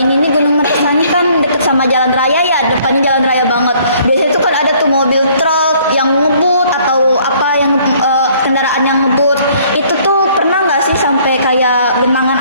Ini nih Gunung Meraksa ini kan deket sama jalan raya ya, depannya jalan raya banget. Biasanya tuh kan ada tuh mobil truk yang ngebut atau apa yang kendaraan yang ngebut. Itu tuh pernah nggak sih sampai kayak genangan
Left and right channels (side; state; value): both; inverted; correlation -0.60